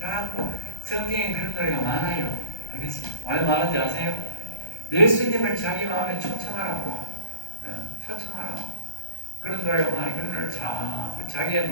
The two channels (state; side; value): late; right; 1.3 ms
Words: 성경에 그런 노래가 많아요. 알겠습니까? 왜 말하는지 아세요? 예수님을 자기 마음에 초청하라고 초청하라고 그런 노래가 많아요. 그런 노래를 자꾸 자기에